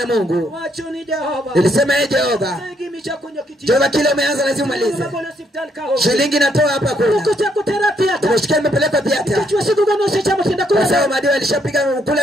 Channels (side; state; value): both; normal; correlation 0.72